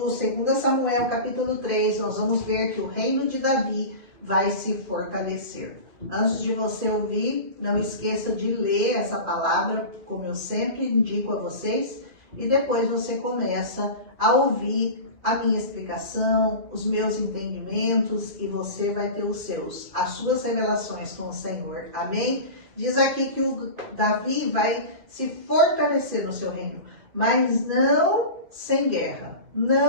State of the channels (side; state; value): left; late; 2.5 ms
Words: 2 Samuel, capítulo 3. Nós vamos ver que o reino de Davi vai se fortalecer. Antes de você ouvir, não esqueça de ler essa palavra, como eu sempre indico a vocês, e depois você começa a ouvir a minha explicação, os meus entendimentos, e você vai ter as suas revelações com o Senhor. Amém? Diz aqui que o Davi vai se fortalecer no seu reino, mas não sem guerra,